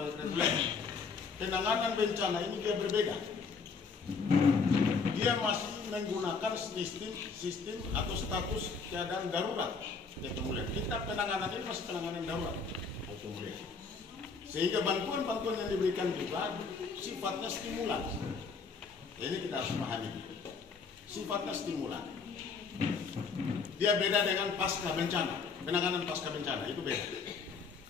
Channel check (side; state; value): right; quieter; 5.0 dB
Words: reguler. Penanganan bencana ini dia berbeda. Dia masih menggunakan sistem atau status keadaan darurat. Kita penanganan ini masih penanganan darurat. Sehingga bantuan-bantuan yang diberikan juga sifatnya stimulan. Ini kita harus pahami. Sifatnya stimulan. Dia beda dengan pasca bencana. Penanganan pasca bencana itu beda.